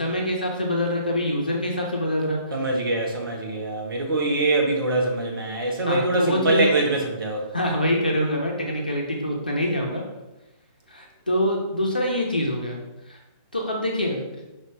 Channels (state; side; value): inverted; both; correlation -0.60